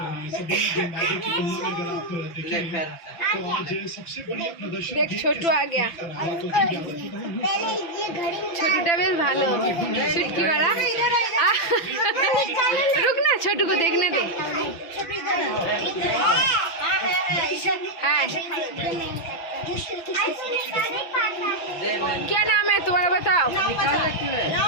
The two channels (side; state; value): right; late; 6.0 ms